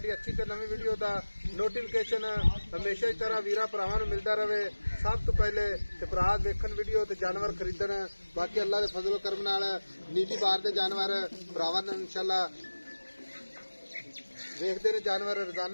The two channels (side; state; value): both; inverted; correlation -1.00